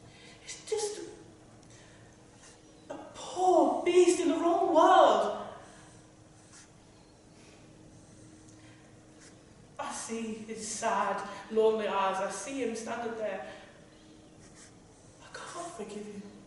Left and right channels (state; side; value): identical; both; correlation 1.00